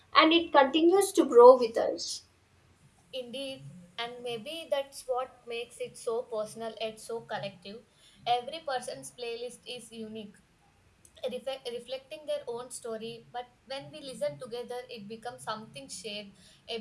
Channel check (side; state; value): both; identical; correlation 1.00